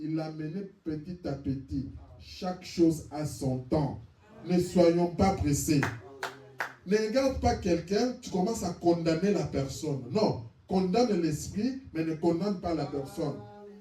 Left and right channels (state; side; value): identical; both; correlation 1.00